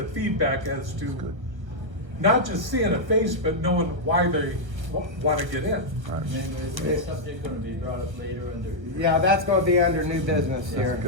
feedback as to not just seeing a face, but knowing why they want to get in. And then is this subject gonna be brought up later under? Yeah, that's gonna be under new business here.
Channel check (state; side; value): late; left; 1.1 ms